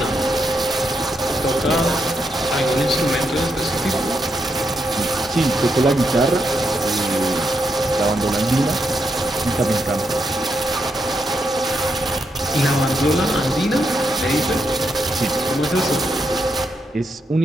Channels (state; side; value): normal; both; correlation 0.81